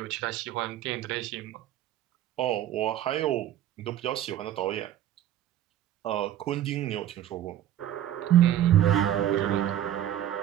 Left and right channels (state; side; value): quieter; left; 11.8 dB